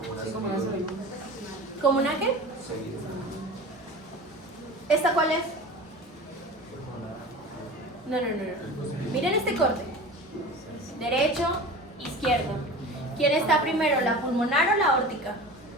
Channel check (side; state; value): both; normal; correlation 0.35